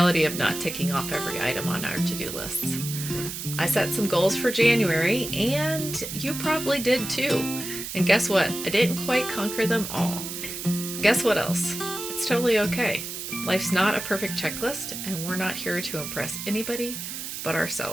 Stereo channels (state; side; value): noise; right; hiss, 7 dB below the sound